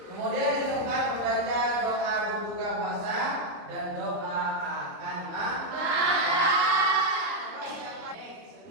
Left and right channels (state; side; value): late; left; 29 ms